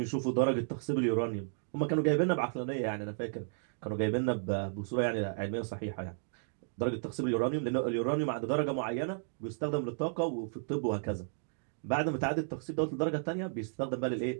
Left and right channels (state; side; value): silent; left; digital silence